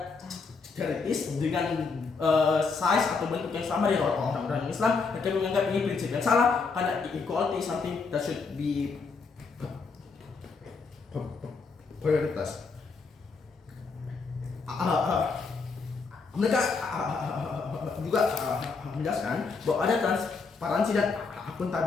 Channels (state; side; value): quieter; right; 4.7 dB